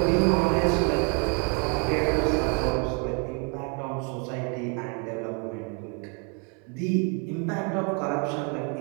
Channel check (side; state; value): left; quieter; 36.1 dB